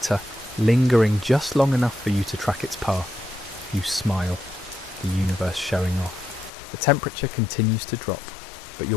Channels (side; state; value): right; drops out; at 6.5 s